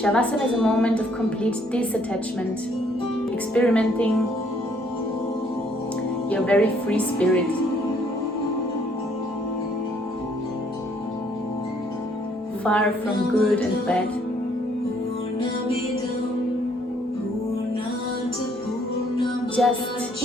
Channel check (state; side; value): normal; both; correlation 0.65